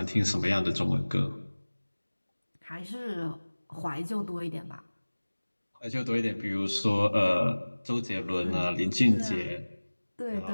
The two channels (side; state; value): both; inverted; correlation -1.00